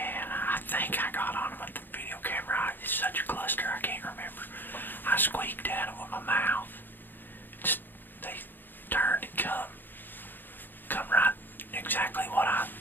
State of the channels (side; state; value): right; late; 0.093 ms